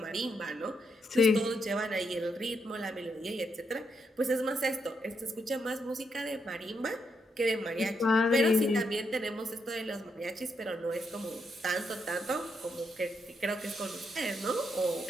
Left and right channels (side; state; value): both; normal; correlation 0.79